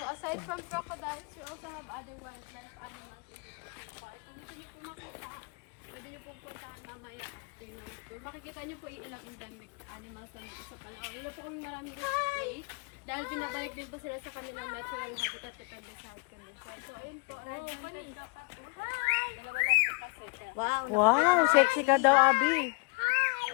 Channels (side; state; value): right; quieter; 32.1 dB